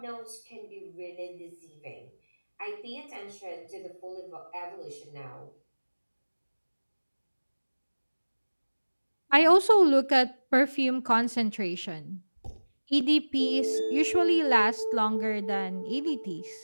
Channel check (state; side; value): inverted; both; correlation -1.00